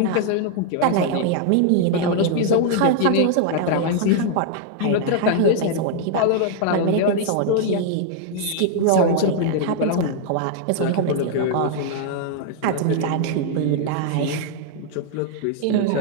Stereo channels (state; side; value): different; both; correlation 0.00